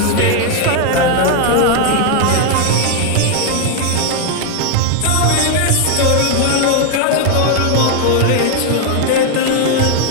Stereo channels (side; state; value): both; different; correlation 0.00